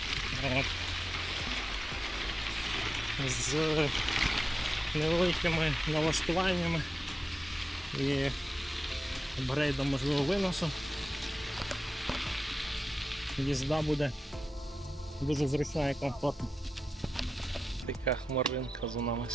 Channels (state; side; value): normal; both; correlation 0.93